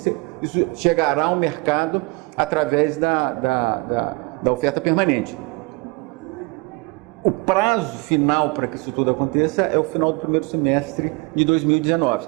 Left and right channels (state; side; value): quieter; left; 26.1 dB